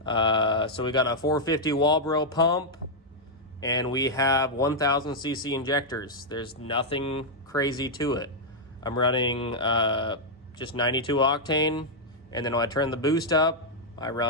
So we got a 450 Walbro pump, and we have 1000 cc injectors. There's nothing crazy to it. I'm running just 92 octane, and then when I turn the boost up, I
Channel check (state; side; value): normal; both; correlation -0.04